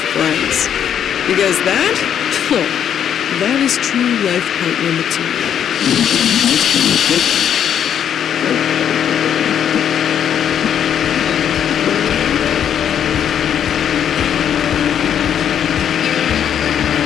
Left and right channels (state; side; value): quieter; right; 9.0 dB